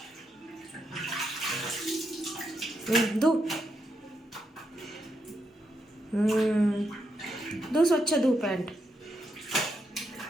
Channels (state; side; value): normal; both; correlation 0.81